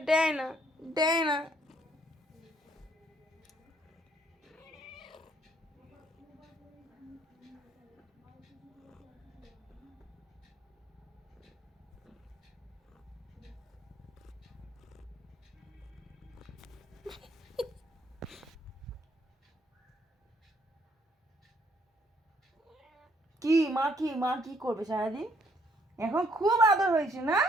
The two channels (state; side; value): normal; both; correlation 0.67